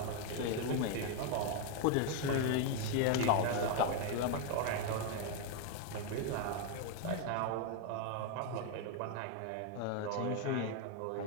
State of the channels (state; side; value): different; both; correlation 0.01